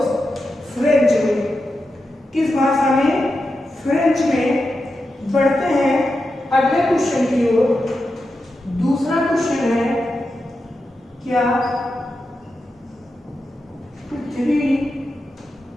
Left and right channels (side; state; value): both; normal; correlation 0.89